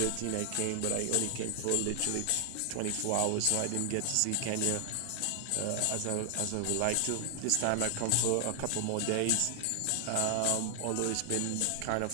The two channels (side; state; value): both; different; correlation 0.00